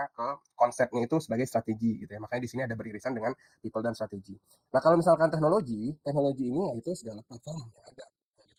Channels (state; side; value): identical; both; correlation 1.00